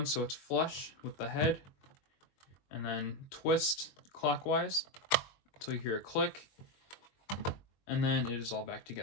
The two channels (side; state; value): right; late; 22 ms